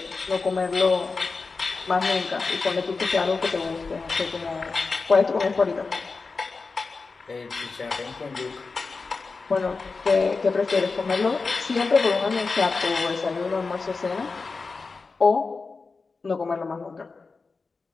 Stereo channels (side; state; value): right; quieter; 4.3 dB